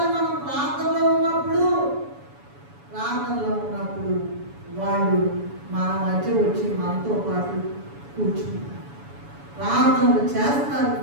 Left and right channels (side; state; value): left; late; 7.1 ms